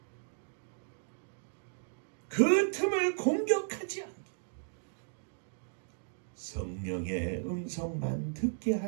그 틈을 공격하지 않게 성령의 음성만 듣게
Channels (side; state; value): left; silent; digital silence